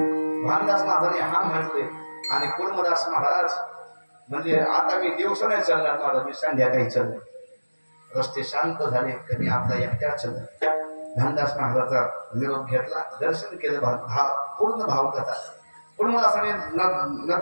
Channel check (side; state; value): both; inverted; correlation -1.00